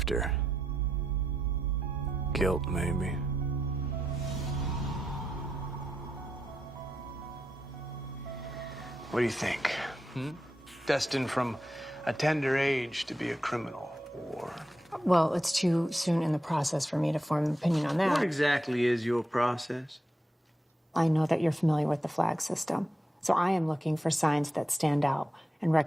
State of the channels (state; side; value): normal; both; correlation 0.85